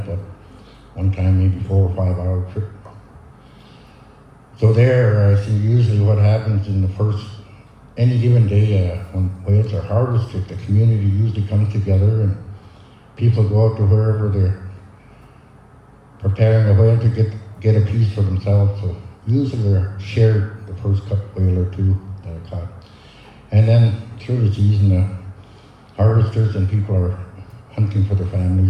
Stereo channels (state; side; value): identical; both; correlation 1.00